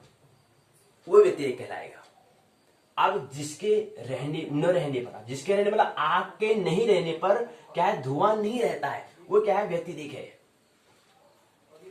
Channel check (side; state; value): both; identical; correlation 1.00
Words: वो व्यतिरेक कहलाएगा। अब जिसके रहने न रहने पर, जिसके रहने मतलब आग के नहीं रहने पर क्या है? धुआं नहीं रहता है, वो क्या है? व्यतिरेक है।